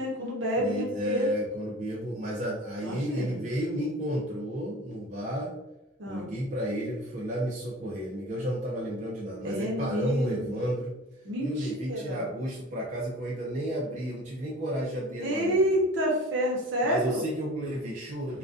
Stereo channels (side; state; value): both; normal; correlation 0.40